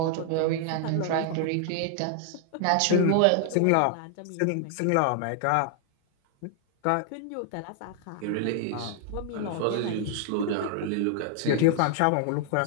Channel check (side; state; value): both; different; correlation 0.00